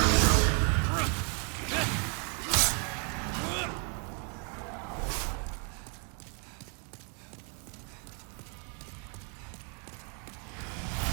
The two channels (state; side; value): quieter; left; 38.6 dB